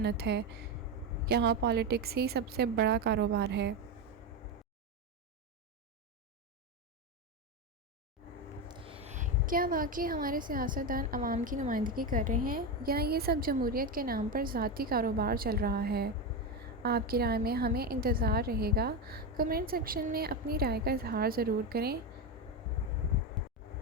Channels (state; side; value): normal; both; correlation 0.14